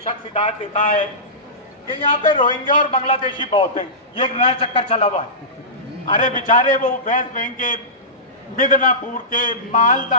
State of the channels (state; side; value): normal; both; correlation -0.19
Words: शख्स हिदायत देता है कि यहाँ पे रोहिंग्या और बांग्लादेशी बहुत हैं। ये एक नया चक्कर चला हुआ है। अरे बेचारे वो वेस्ट बैंक के, मिदनापुर के,